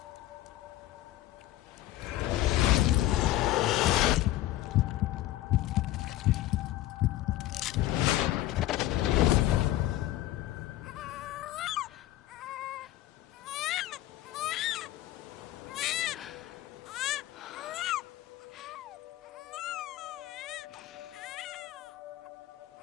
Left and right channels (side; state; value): right; quieter; 15.1 dB